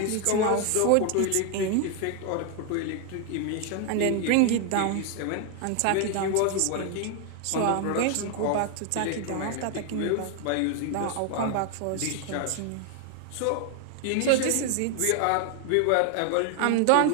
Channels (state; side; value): different; both; correlation 0.01